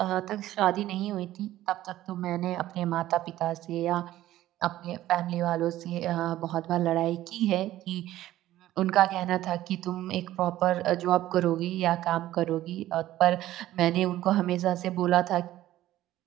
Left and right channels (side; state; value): left; quieter; 14.4 dB